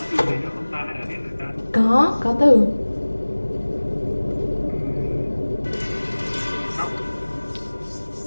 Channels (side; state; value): both; inverted; correlation -1.00